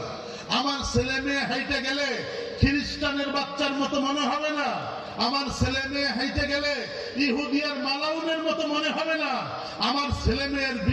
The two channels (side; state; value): both; identical; correlation 1.00